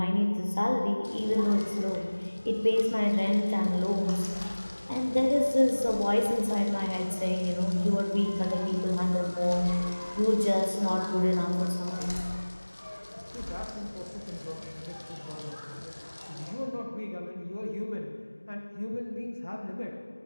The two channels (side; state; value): both; inverted; correlation -1.00